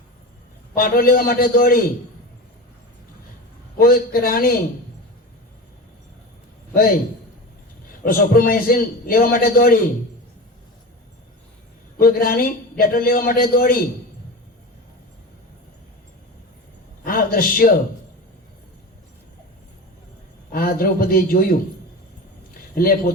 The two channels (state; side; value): normal; both; correlation 0.28